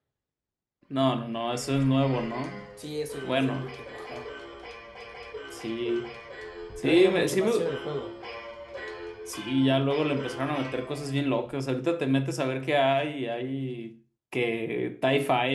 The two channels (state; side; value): identical; both; correlation 1.00